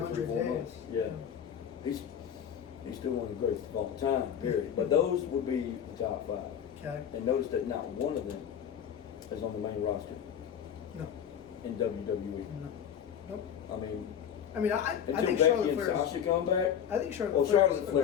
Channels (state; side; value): quieter; right; 8.8 dB